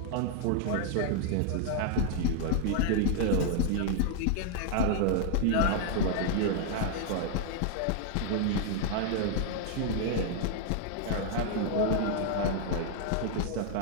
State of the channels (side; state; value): both; different; correlation 0.00